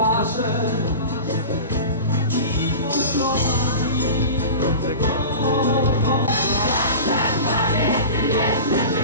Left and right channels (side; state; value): both; inverted; correlation -0.33